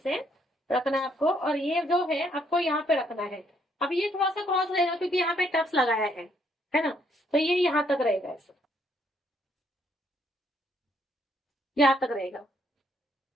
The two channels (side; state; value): both; normal; correlation 0.70